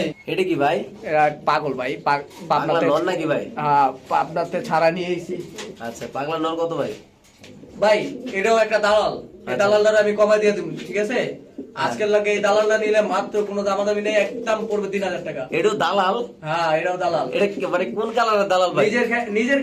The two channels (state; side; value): identical; both; correlation 1.00